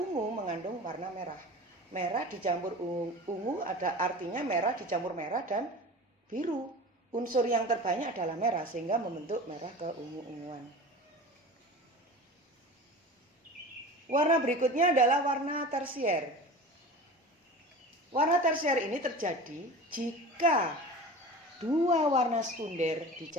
mengandung warna merah. Merah dicampur ungu ada artinya merah dicampur merah dan biru. Unsur yang terbanyak adalah merah sehingga membentuk merah keungu-unguan. Warna berikutnya adalah warna tersier. Warna tersier ini terjadi jika dua warna sekunder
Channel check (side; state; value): both; normal; correlation 0.35